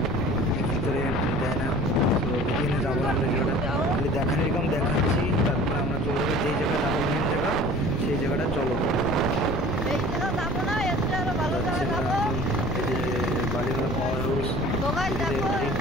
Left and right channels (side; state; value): left; noise; rumble, 5 dB below the sound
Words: ভিতরে দেয় না। তো এখানে যাবো আমরা, খালি দেখার এরকম দেখাচ্ছি, তারপরে আমরা চলে যাবো যেই জায়গাটা যাবো মেন জায়গা, সেই জায়গাটা চলো। বালিমেলা পাওয়ার হাউস সবাই